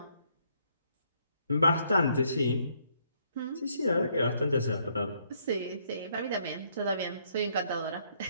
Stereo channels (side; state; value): both; inverted; correlation -0.69